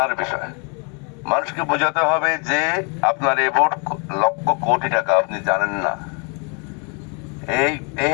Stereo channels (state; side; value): quieter; right; 36.0 dB